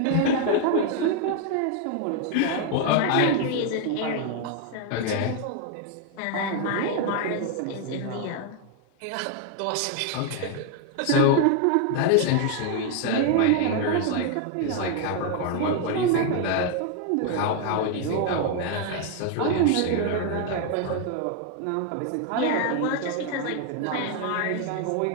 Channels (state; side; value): different; both; correlation 0.01